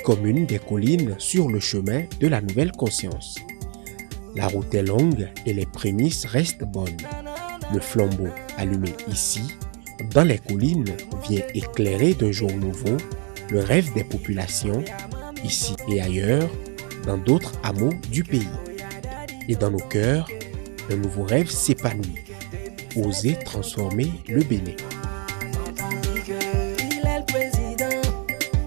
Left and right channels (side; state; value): left; quieter; 36.2 dB